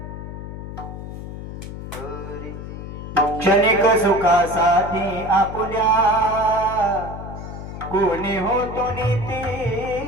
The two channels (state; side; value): noise; left; hum, 9 dB below the sound